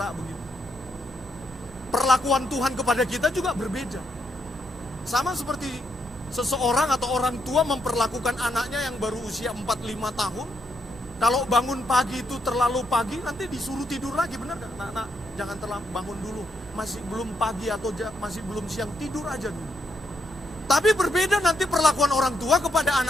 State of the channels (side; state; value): both; normal; correlation 0.78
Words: begitu. Perlakuan Tuhan kepada kita juga berbeda. Sama seperti seseorang atau orang tua memperlakukan anaknya yang baru usia 4-5 tahun. Kalau bangun pagi itu terlalu pagi, nanti disuruh tidur lagi, benar gak? Nak, jangan terlalu bangun dulu, masih belum pagi atau masih belum siang, tidur aja dulu. Tapi berbeda nanti perlakuan orang tua kepada